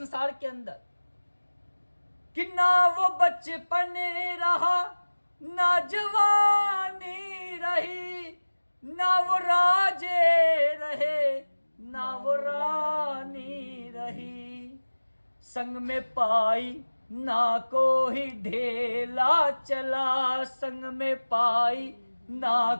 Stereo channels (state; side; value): inverted; both; correlation -1.00